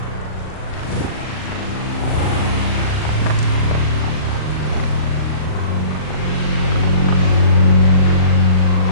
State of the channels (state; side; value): late; right; 39 ms